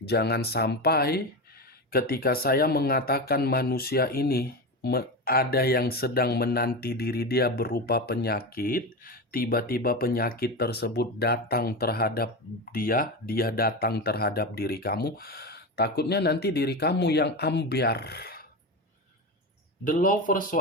Jangan sampai ketika saya mengatakan manusia ini ada yang sedang menanti diri dia berupa penyakit, tiba-tiba penyakit tersebut datang terhadap dia datang terhadap diri kamu, takutnya nanti diri kamu yang ambiar. The Lovers,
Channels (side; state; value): both; normal; correlation 0.20